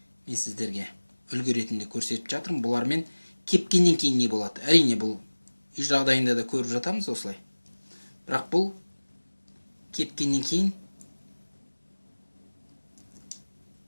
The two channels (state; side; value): inverted; both; correlation -1.00